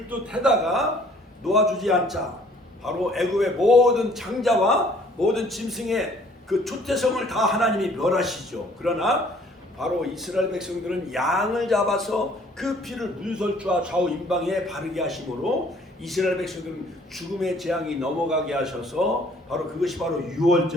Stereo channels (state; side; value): normal; both; correlation 0.58